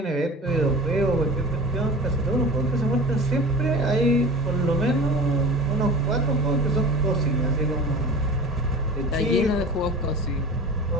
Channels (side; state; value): both; normal; correlation 0.36